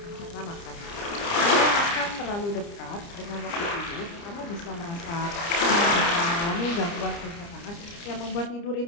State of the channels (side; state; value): right; late; 30 ms